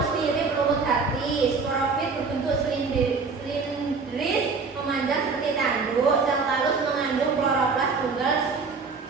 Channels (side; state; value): left; quieter; 4.7 dB